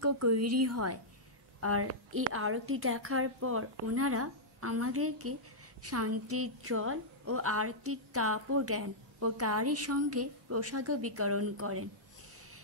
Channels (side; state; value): both; normal; correlation -0.09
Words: তৈরি হয়। আর এই আরতি দেখার পর ওনারা আমাদেরকে শান্তির জল ও আরতির তাপও দেন ও তারই সঙ্গে প্রসাদও বিতরণ করেন।